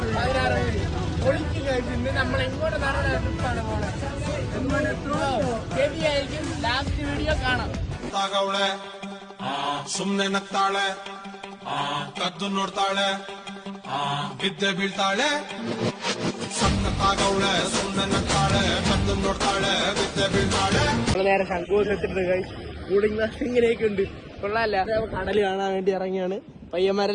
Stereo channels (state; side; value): identical; both; correlation 1.00